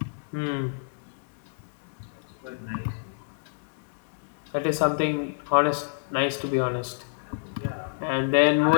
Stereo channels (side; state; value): right; silent; digital silence